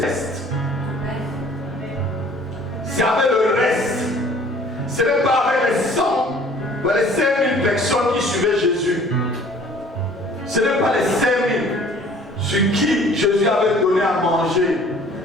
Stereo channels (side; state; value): both; normal; correlation 0.52